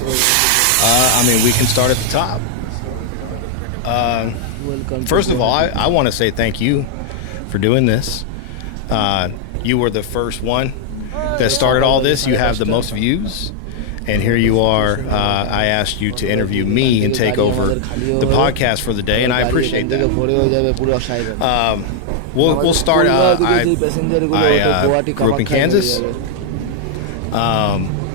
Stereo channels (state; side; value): different; both; correlation 0.00